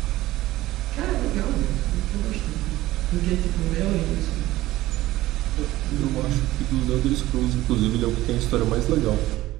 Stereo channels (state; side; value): quieter; left; 16.4 dB